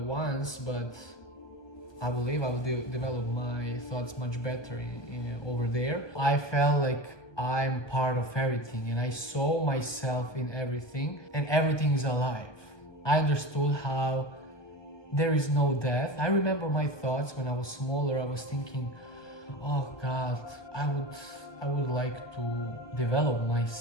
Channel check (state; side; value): late; right; 1.2 ms